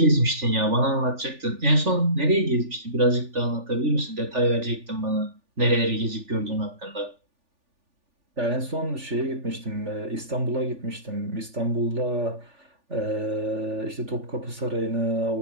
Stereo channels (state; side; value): late; left; 3.4 ms